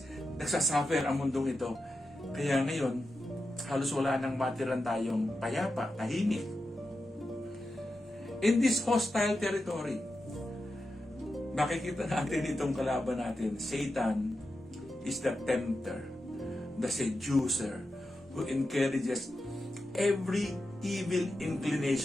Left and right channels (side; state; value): both; normal; correlation 0.90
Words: nagsasuffer ang mundong ito. Kaya ngayon, halos wala nang matiran tayong payapa, tahimik. In this hostile territory, makikita natin itong kalaban natin. Satan is the tempter, the seducer, who encourages every evil